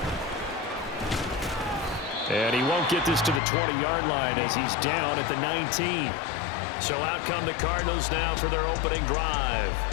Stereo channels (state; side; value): drops out; right; at 3.4 s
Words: And he won't get this to the 20-yard line as he's down at the 19. So out come the Cardinals now for their opening drive.